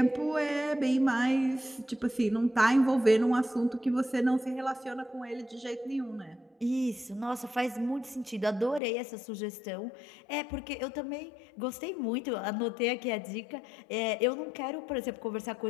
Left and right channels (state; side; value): drops out; right; at 8.8 s